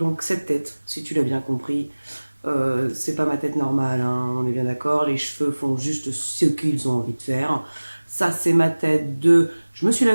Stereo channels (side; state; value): both; inverted; correlation -1.00